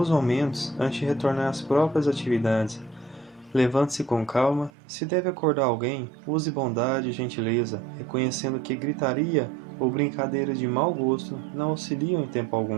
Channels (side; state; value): left; drops out; at 4.7 s